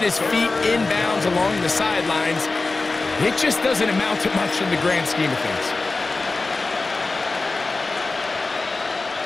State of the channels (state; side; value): quieter; right; 3.6 dB